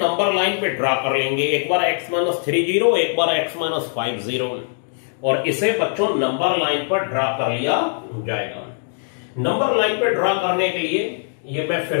लाइन पे ड्रा कर लेंगे। एक बार x-3 0, एक बार x-5 0 और इसे बच्चों नंबर लाइन पर ड्रा कर लिया जाएगा। नंबर लाइन पर ड्रा करने के लिए ये मैं फिर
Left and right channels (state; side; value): silent; right; digital silence